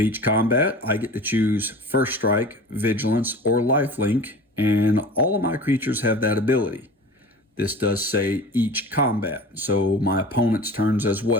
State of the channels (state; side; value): normal; both; correlation 0.38